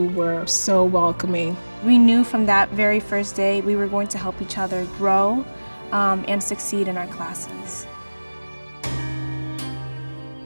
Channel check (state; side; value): inverted; both; correlation -1.00